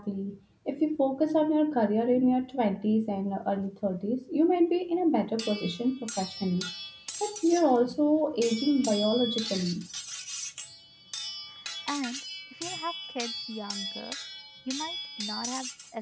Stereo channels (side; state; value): both; identical; correlation 1.00